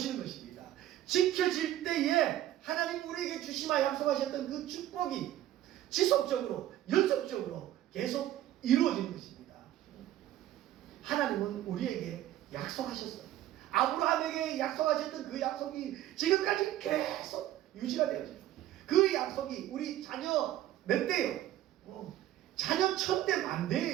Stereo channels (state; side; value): quieter; left; 13.3 dB